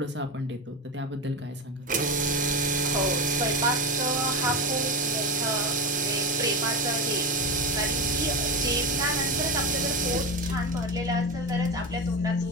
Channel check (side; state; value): both; normal; correlation 0.20